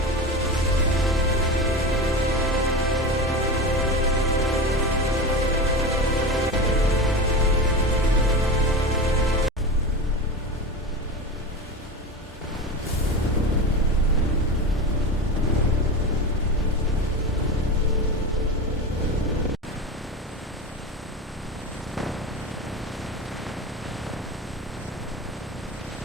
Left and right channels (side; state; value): both; normal; correlation 0.25